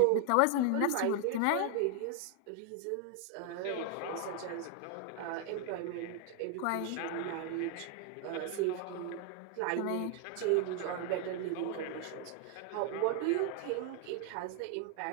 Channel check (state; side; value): different; both; correlation 0.00